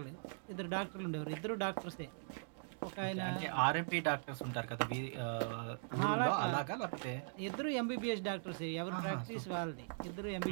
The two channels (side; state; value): left; silent; digital silence